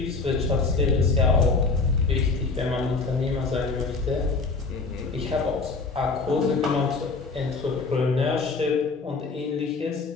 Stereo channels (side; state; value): right; quieter; 4.0 dB